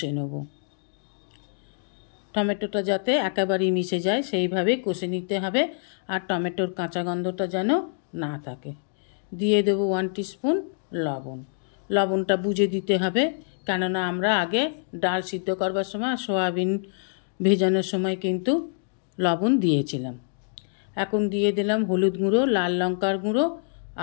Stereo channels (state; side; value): silent; right; digital silence